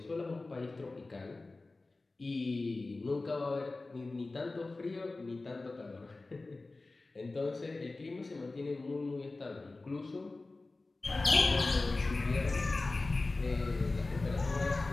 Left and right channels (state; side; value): quieter; right; 3.3 dB